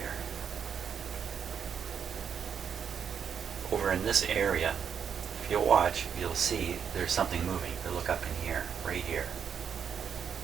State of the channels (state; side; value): quieter; left; 7.5 dB